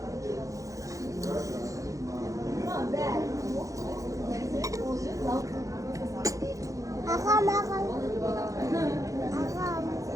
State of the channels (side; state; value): left; late; 0.16 ms